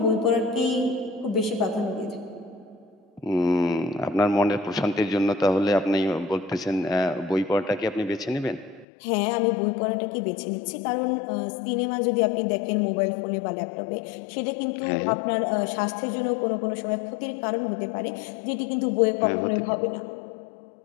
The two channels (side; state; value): right; drops out; at 8.8 s